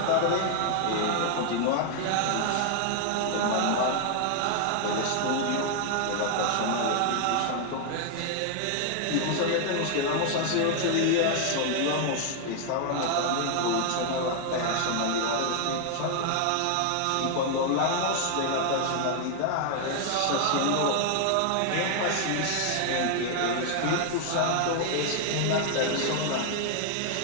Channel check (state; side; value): different; both; correlation 0.00